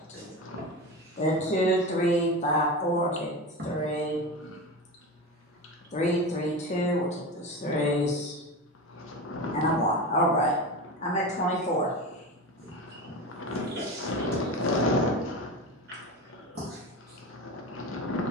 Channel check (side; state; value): both; normal; correlation 0.25